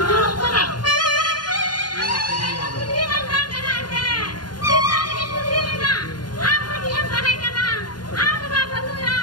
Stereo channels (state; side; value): late; right; 0.70 ms